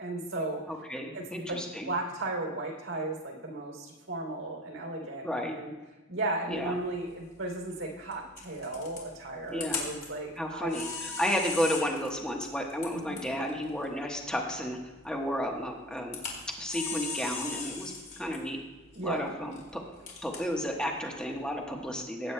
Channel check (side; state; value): both; normal; correlation 0.43